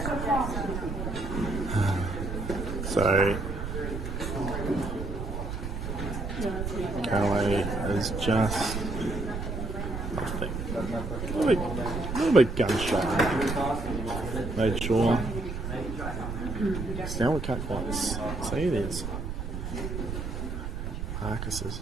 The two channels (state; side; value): noise; right; rumble, 5 dB below the sound